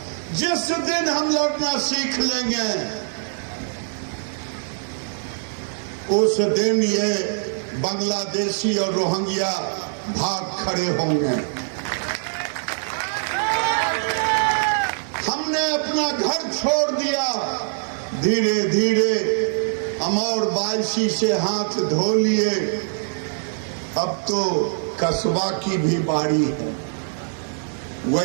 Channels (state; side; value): silent; left; digital silence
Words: जिस दिन हम लड़ना सीख लेंगे उस दिन ये बांग्लादेशी और रोहिंग्या भाग खड़े होंगे। हमने अपना घर छोड़ दिया, धीरे धीरे हम और 22 से हाथ धो लिए। अब तो कस्बा की भी बारी है,